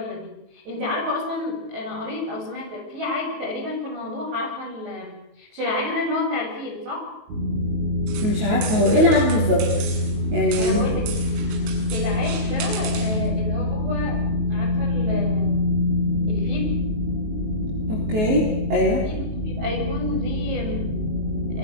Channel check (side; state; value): left; late; 19 ms